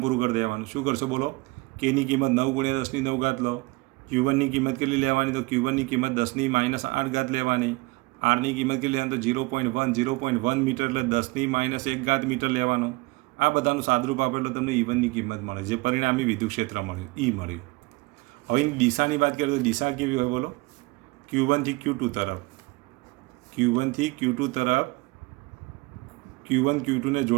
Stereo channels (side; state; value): left; quieter; 24.0 dB